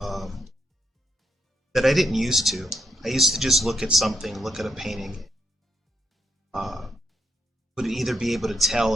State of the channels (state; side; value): normal; both; correlation 0.78